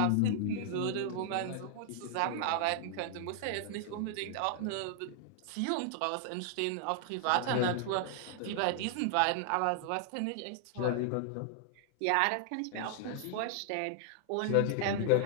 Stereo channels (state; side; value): different; both; correlation 0.00